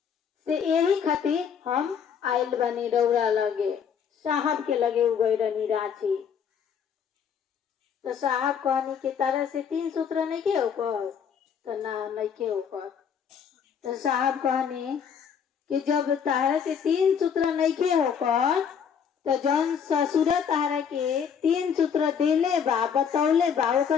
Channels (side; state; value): right; quieter; 7.4 dB